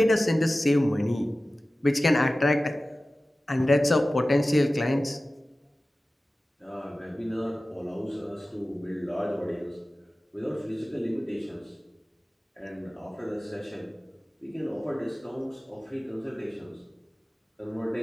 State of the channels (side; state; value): both; normal; correlation 0.96